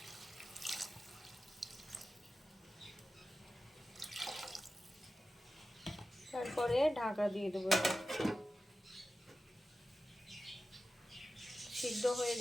তারপরে ঢাকা দিয়ে দেবো, সিদ্ধ হয়ে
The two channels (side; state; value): both; normal; correlation 0.94